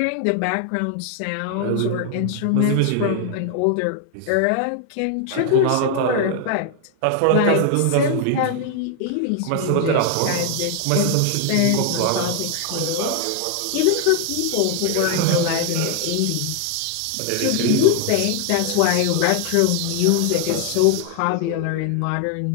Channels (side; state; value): both; different; correlation 0.00